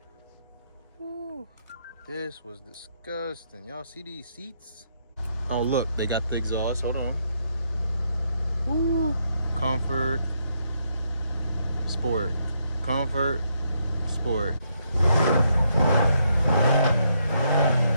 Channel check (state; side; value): inverted; both; correlation -0.76